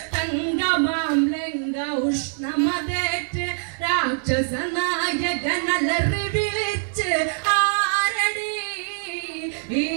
തങ്കമാം ലങ്ക ഉഷ്ണമതേറ്റ് രാക്ഷസ നായകനലറി വിളിച്ച് ആരടി ഈ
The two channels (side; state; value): left; silent; 63 dB below the other